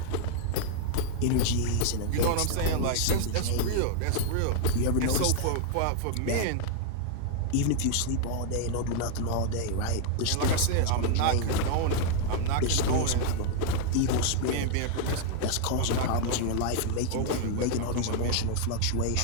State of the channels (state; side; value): different; both; correlation -0.01